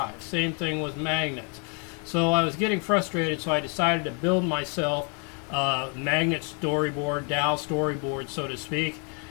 Same thing with magnets. So I was getting frustrated, so I decided to build myself a magnet storyboard, dowel storyboard, so to speak,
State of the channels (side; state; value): right; quieter; 38.2 dB